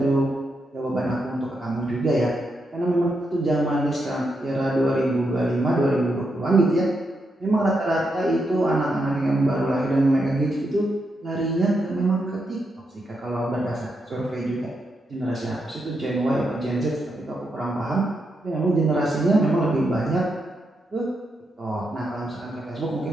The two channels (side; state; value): both; normal; correlation 0.83